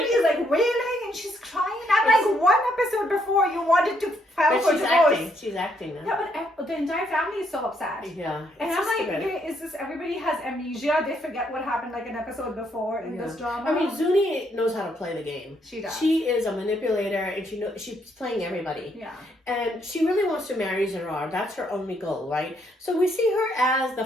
like wailing and she's crying. And like one episode before, you wanted to file for divorce. She's acting now. Yeah, but the entire family is so upset. Yeah, and I'm like, okay, is this everybody has amnesia? They forget what happened like an episode before in this drama. I mean, Zuni knows how to play the game. She does. She is a manipulator, and she's playing everybody. Yeah. And she really wants to marry Zarar. That's her only goal, right? So we see her as the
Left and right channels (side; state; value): both; normal; correlation 0.73